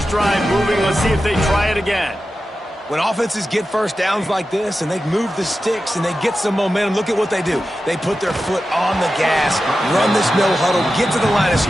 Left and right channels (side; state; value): both; normal; correlation 0.92